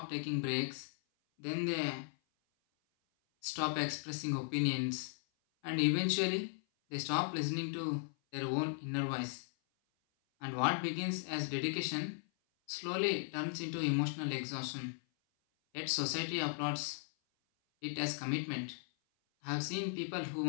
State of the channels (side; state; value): right; silent; 53 dB below the other